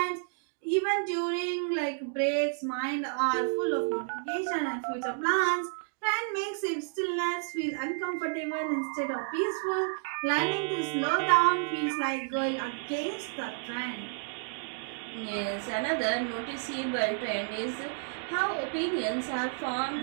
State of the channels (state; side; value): silent; left; digital silence